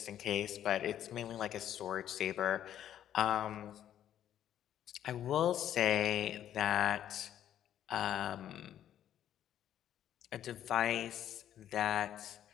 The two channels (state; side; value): quieter; right; 10.9 dB